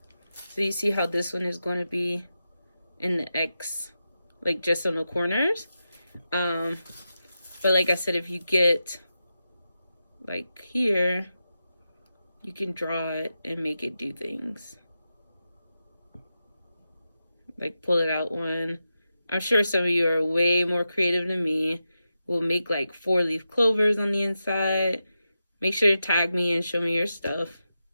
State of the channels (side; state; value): both; inverted; correlation -0.90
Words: So you see how this one is going to be in the X, like just on the corners. But like I said, if you get like here, you can draw it and make it do things. Like pull it out one. I'm sure some of you are way more creative than me. We'll make like 4-leaf clovers on the inside. Make sure to tag me and show me your stuff.